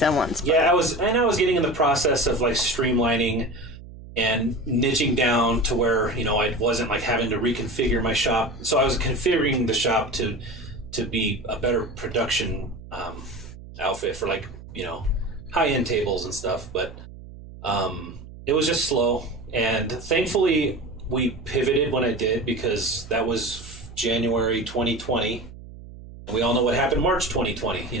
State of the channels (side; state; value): right; noise; hum, 16 dB below the sound